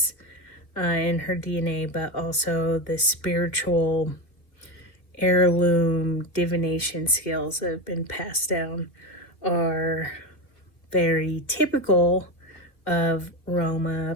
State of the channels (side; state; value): right; late; 2.2 ms